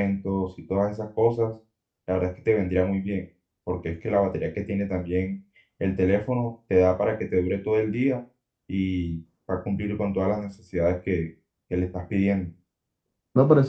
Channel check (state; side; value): identical; both; correlation 1.00